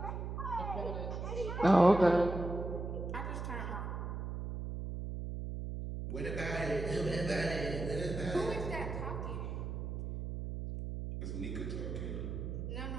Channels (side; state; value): right; noise; hum, 5 dB below the sound